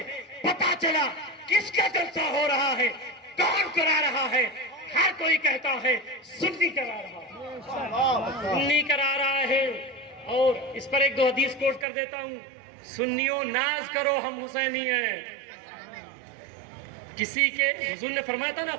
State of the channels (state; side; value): drops out; left; at 11.9 s